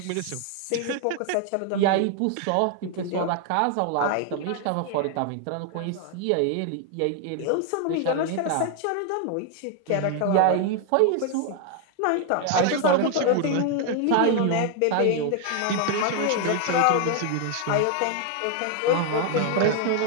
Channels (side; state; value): both; different; correlation 0.00